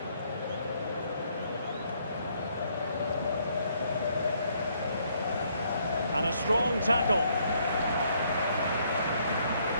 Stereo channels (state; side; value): inverted; both; correlation -0.69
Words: And a strong tackle.